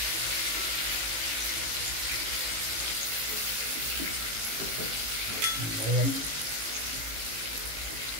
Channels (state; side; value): late; left; 18 ms